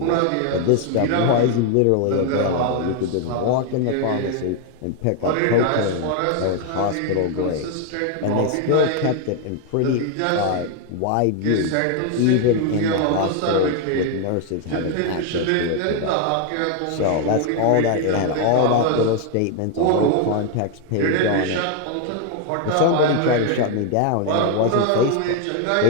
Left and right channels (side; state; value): both; different; correlation 0.01